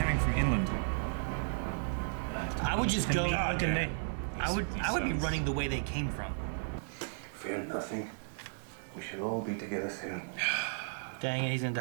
from inland. I would just go. God, yeah. I would be running the way they came from. Fear nothing. We should all be together soon. Dang it, he's gonna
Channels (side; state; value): left; silent; digital silence